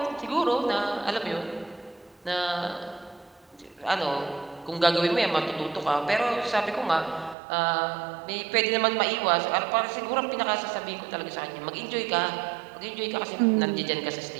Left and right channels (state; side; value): drops out; left; at 7.4 s